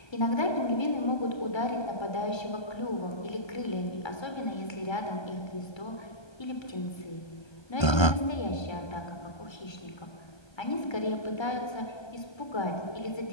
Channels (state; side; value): late; right; 1.3 ms